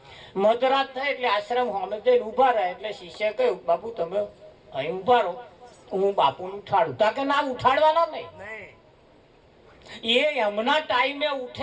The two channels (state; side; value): identical; both; correlation 1.00